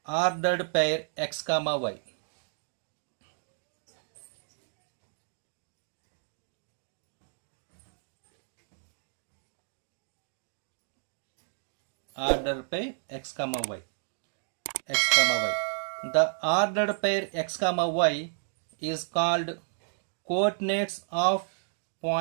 ordered pair x comma y. Ordered pair x comma y. The ordered pair x comma y is called coordinates of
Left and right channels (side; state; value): left; silent; digital silence